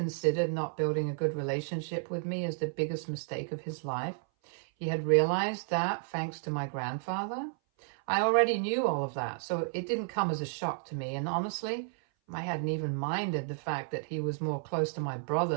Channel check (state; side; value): silent; left; 56 dB below the other